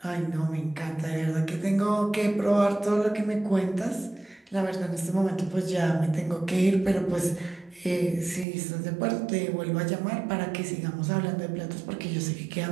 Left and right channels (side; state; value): left; drops out; at 8.5 s